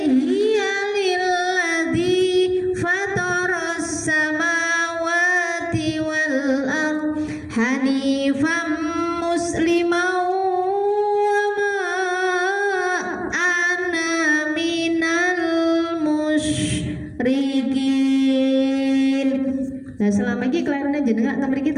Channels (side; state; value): both; identical; correlation 1.00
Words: lilladzi fataras samawati wal ard hanifan musliman wa Nah selama ini kelairane jenengan teng mriki